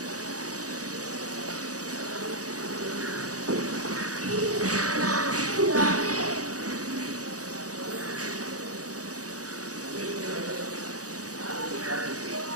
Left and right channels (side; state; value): left; late; 0.67 ms